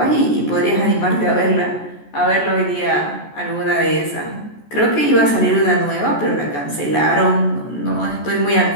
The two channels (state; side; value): late; right; 14 ms